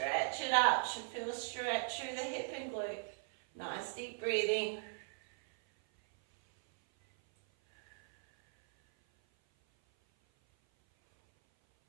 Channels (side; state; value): left; silent; 53 dB below the other